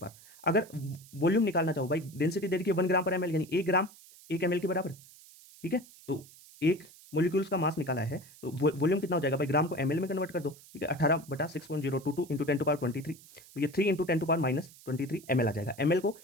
अगर वॉल्यूम निकालना चाहो भाई, डेंसिटी दे रखी है 1 ग्राम पर ml, यानी 1 ग्राम 1 ml के बराबर। ठीक है, तो 1 मोलिक्यूल्स का मास निकाला है, तो वॉल्यूम कितना हो जाएगा भाई, ग्राम को ml में कन्वर्ट कर दो, ठीक है, 18/6.022 इंटू 10⁻23, तो ये 3 इंटू 10⁻23 ml आ जाएगा। ml को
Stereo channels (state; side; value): noise; right; hiss, 22 dB below the sound